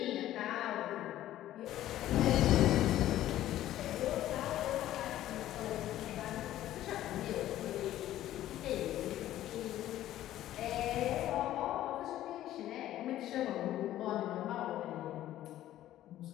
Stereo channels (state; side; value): quieter; right; 13.4 dB